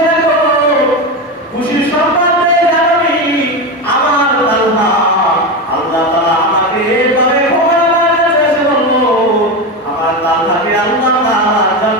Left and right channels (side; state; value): both; normal; correlation 0.17